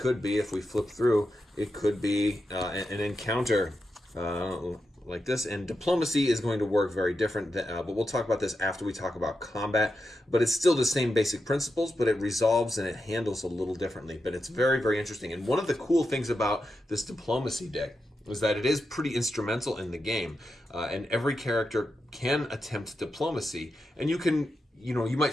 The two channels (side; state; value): both; normal; correlation 0.88